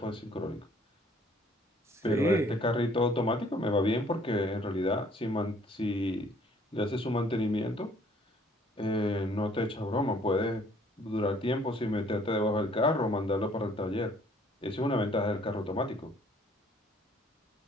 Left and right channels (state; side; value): normal; both; correlation 0.60